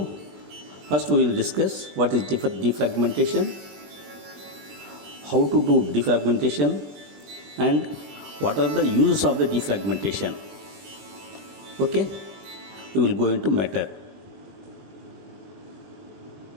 first we will discuss what is defragmentation, how to do defragmentation, and what are the uses of the defragmentation. Okay, we will go into matter.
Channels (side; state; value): left; late; 20 ms